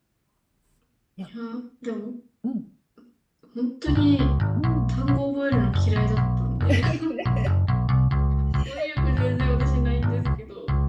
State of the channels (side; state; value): both; identical; correlation 1.00